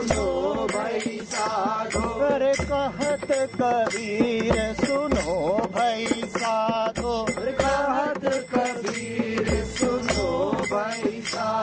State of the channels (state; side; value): identical; both; correlation 1.00